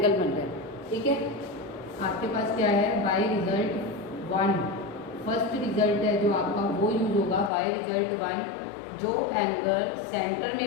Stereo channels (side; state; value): right; drops out; at 7.5 s